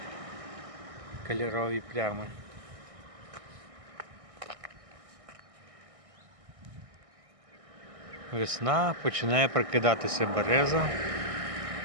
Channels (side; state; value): left; late; 1.6 ms